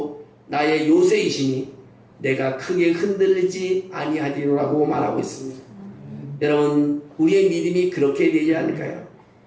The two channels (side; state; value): both; identical; correlation 1.00